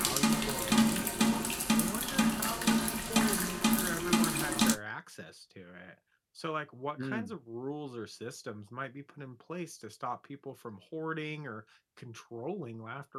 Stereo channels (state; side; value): identical; both; correlation 1.00